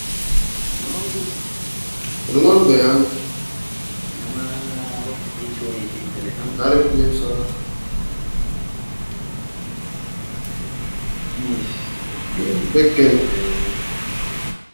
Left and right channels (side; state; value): both; inverted; correlation -1.00